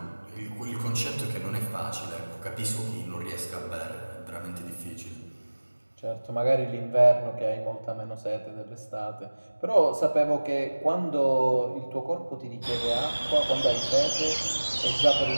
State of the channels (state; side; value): inverted; both; correlation -1.00